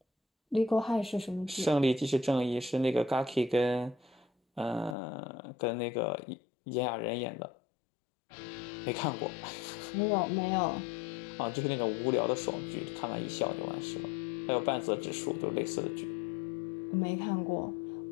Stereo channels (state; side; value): drops out; right; at 5.0 s